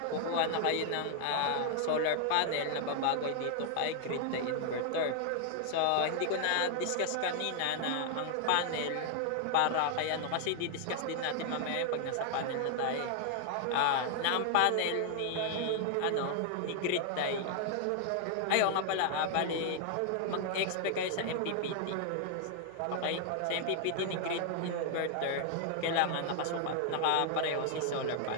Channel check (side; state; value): both; different; correlation 0.00